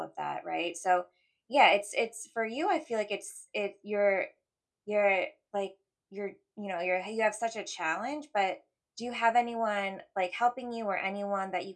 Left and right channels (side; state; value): both; identical; correlation 1.00